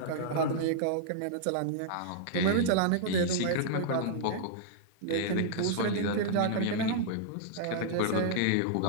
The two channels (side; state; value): both; different; correlation -0.02